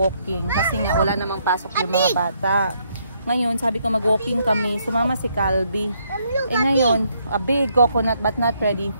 kasi nga wala namang pasok yung mga bata. Ngayon, sabi ko mag-walking kami, sumama si Calby. Ngayon, a big coconut but not ready.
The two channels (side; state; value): both; inverted; correlation -0.72